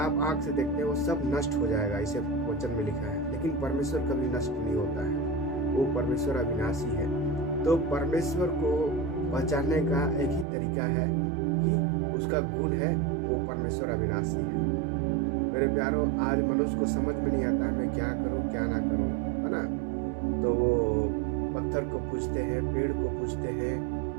आंख से देखते हैं वो सब नष्ट हो जाएगा, इसे वचन में लिखा है। लेकिन परमेश्वर कभी नष्ट नहीं होता है, वो परमेश्वर अविनाशी है। तो परमेश्वर को पहचानने का एक ही तरीका है कि उसका गुण है, वो परमेश्वर अविनाशी है। मेरे प्यारों, आज मनुष्य को समझ में नहीं आता है मैं क्या करूं क्या ना करूं, है ना। तो वो पत्थर को पूजते हैं, पेड़ को पूजते हैं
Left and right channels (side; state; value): left; drops out; at 10.5 s